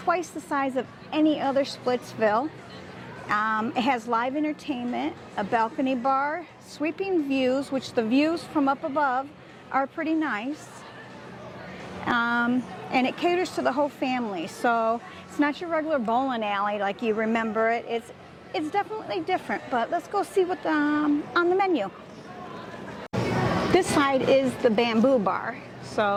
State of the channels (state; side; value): identical; both; correlation 1.00